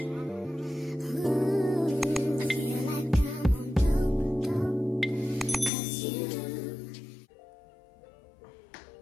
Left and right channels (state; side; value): drops out; right; at 5.7 s